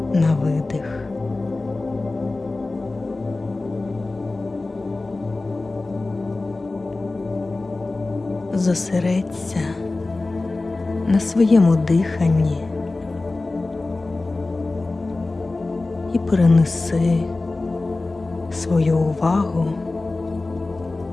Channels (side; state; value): right; quieter; 3.2 dB